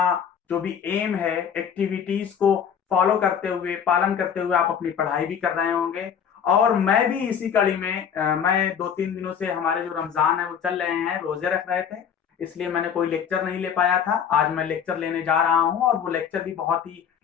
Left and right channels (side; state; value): right; quieter; 7.9 dB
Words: जो भी एम है एक्टिविटीज को फॉलो करते हुए पालन करते हुए आप अपनी पढ़ाई भी कर रहे होंगे। और मैं भी इसी कड़ी में मैं 2-3 दिनों से हमारे जो रमजान है वो चल रहे हैं, रोजे रख रहे थे, इसलिए मैंने कोई लेक्चर नहीं ले पाया था। आज मैं लेक्चर लेने जा रहा हूं और वो लेक्चर भी बहुत ही